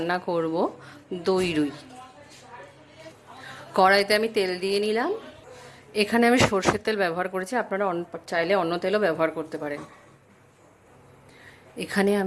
করব দই রুই। কড়াইতে আমি তেল দিয়ে নিলাম। এখানে আমি সরষের তেল ব্যবহার করেছি, আপনারা চাইলে অন্য তেলও ব্যবহার করতে পারেন। এখানে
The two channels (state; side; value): identical; both; correlation 1.00